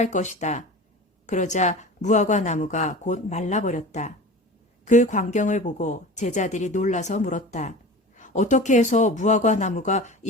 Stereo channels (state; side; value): normal; both; correlation 0.35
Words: 것이다. 그러자 무화과 나무가 곧 말라버렸다. 그 광경을 보고 제자들이 놀라서 물었다. 어떻게 해서 무화과 나무가